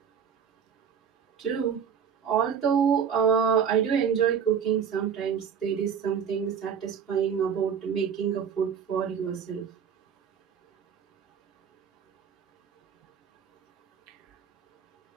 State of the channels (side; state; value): left; quieter; 7.4 dB